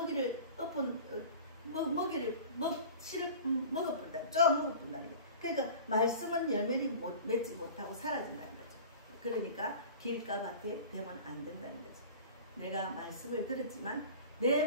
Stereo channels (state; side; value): inverted; both; correlation -0.39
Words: 씨를 먹어본다. 쫙 먹어본다는 거예요. 그러니까 말씀은 열매를 맺지 못하고 사라진다는 거죠. 그러니까 길가밭에 되면 안 된다는 거죠. 내가 말씀을 들었지만